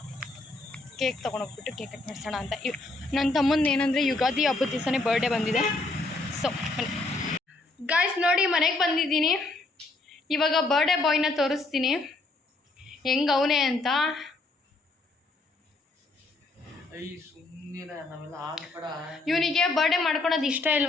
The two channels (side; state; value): right; quieter; 3.2 dB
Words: ಕೇಕ್ ತೊಗೊಂಡೋಗ್ಬಿಟ್ಟು ಕೇಕ್ ಕಟ್ ಮಾಡಿಸೋಣ ಅಂತ. ನನ್ನ ತಮ್ಮಂದು ಏನಂದರೆ ಯುಗಾದಿ ಹಬ್ಬದ ದಿವಸನೇ ಬರ್ಡೇ ಬಂದಿದೆ. ಸೊ ಗಾಯ್ಸ್ ನೋಡಿ, ಮನೆಗೆ ಬಂದಿದ್ದೀನಿ. ಇವಾಗ ಬರ್ಡೇ ಬಾಯ್ನ ತೋರಿಸ್ತೀನಿ ಹೆಂಗೆ ಅವನೇ ಅಂತ. ಇವನಿಗೆ ಬರ್ಡೇ ಮಾಡ್ಕೊಳೋದು ಇಷ್ಟ